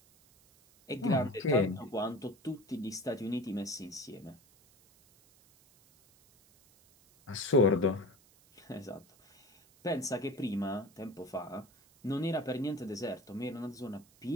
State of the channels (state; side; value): noise; right; hiss, 28 dB below the sound